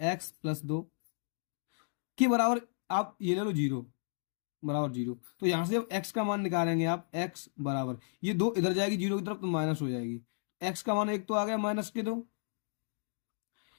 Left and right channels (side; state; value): right; silent; digital silence